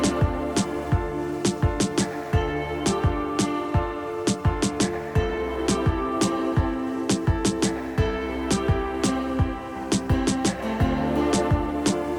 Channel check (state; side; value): identical; both; correlation 1.00